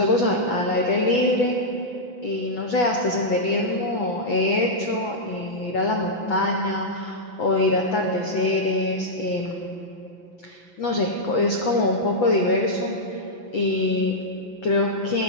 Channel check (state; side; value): late; right; 5.9 ms